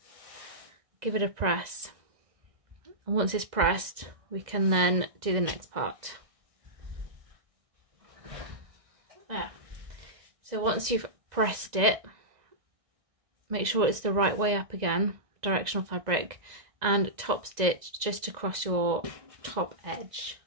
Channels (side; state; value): left; late; 2.0 ms